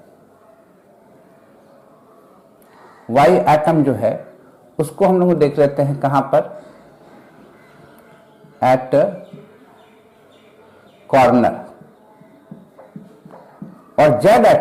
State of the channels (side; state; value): both; identical; correlation 1.00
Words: y एटम जो है उसको हम लोग देख लेते हैं कहां पर, एट कॉर्नर। और z